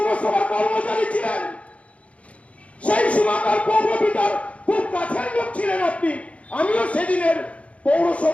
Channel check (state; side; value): late; right; 0.064 ms